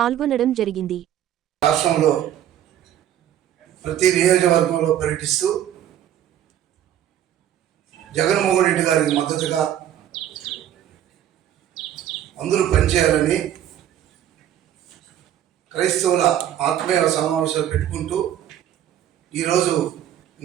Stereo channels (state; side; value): quieter; left; 11.0 dB